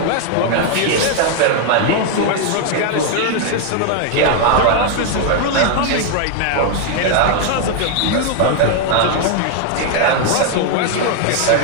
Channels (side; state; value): both; different; correlation 0.00